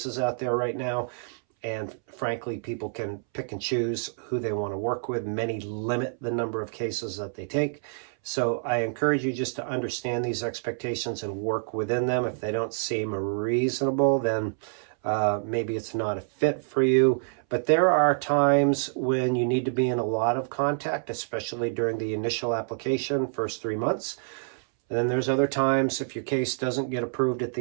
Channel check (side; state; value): left; silent; 60 dB below the other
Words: out there right now. And frankly, people can pick and choose who they want to work with. Many limit the number of cases that they take. So I encourage you just to understand these expectations and work within them. If they don't seem reasonable, then maybe it's not a fit for you. But there are times when you need to be in a lot of contact, especially during the initial application, first 3 months. And then there's other times, if your case doesn't get approved at